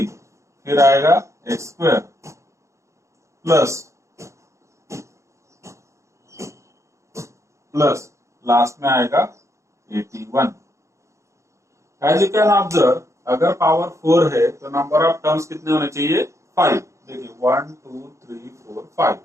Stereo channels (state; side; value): late; left; 0.14 ms